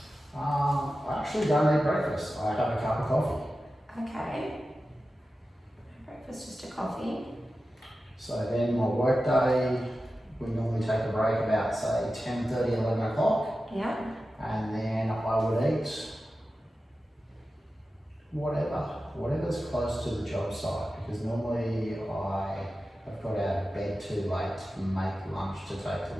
I actually don't eat breakfast. I have a cup of coffee. Okay. Breakfast, just a coffee. So then my work day, we normally take a break about say 10:30, 11 o'clock. Yeah. And then I would eat whatever's close to the job site, because normally I have got out of bed too late to make lunch to take to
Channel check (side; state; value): both; normal; correlation 0.93